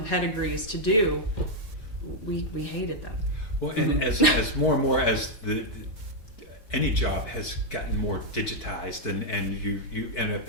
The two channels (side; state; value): right; late; 4.5 ms